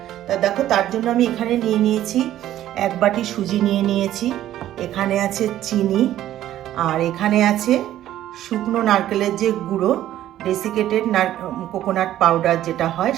তা দেখো, তার জন্য আমি এখানে নিয়ে নিয়েছি 1 বাটি সুজি নিয়ে নিয়েছি, এখানে আছে চিনি, আর এখানে আছে শুকনো নারকেলের যে গুঁড়ো, ডেসিকেটেড কোকোনাট পাউডার যেটা হয়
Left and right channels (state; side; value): quieter; left; 12.8 dB